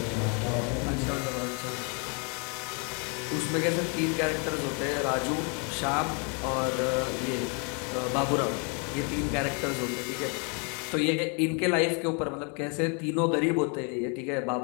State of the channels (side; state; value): right; quieter; 36.6 dB